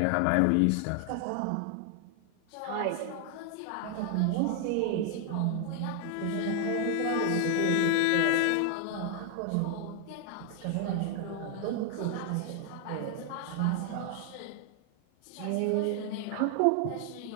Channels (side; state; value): both; different; correlation 0.00